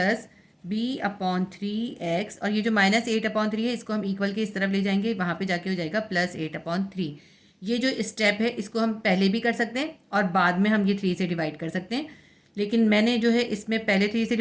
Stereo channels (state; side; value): identical; both; correlation 1.00